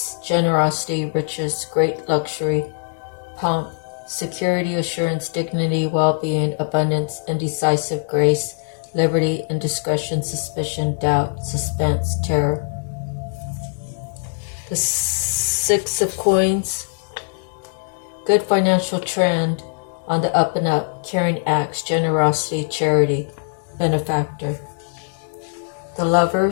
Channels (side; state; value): right; silent; digital silence